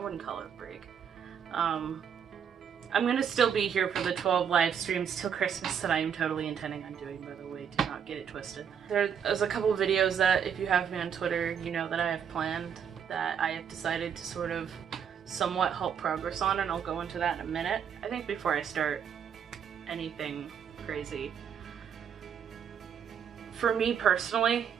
call it a break. I'm gonna still be here for the 12 live streams till Christmas that I am totally intending on doing, by the way, do not get it twisted. There's a couple of videos that, if you have me on Twitter, you know that I have planned, that I have decided to sort of somewhat halt progress on, and I'll go into that in a minute. I think before I start anything crazy, for me personally,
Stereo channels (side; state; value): left; quieter; 7.8 dB